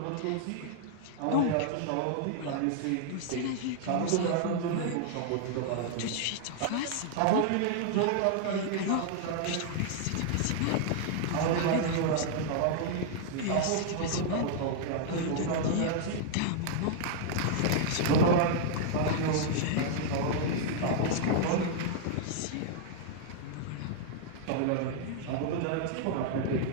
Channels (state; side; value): different; both; correlation -0.01